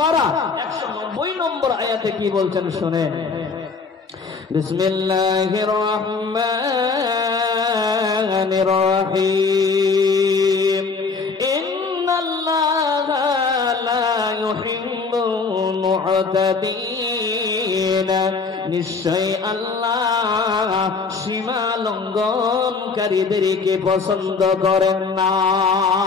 190 নম্বর আয়াতে কি বলছেন শুনেন বিসমিল্লাহির রহমানির রহিম ইন্নাল্লাহা লা ইউহিব্বুল মু'তাদিন নিশ্চয় আল্লাহ সীমা লঙ্ঘনকারীদেরকে পছন্দ করেন না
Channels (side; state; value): right; quieter; 4.7 dB